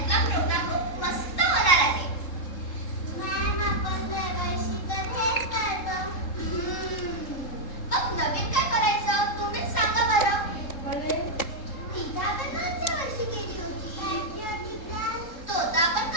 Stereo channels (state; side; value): late; right; 3.7 ms